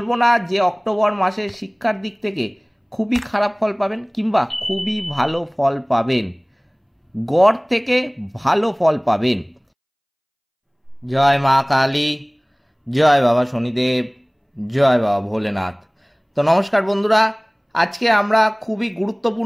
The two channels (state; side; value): identical; both; correlation 1.00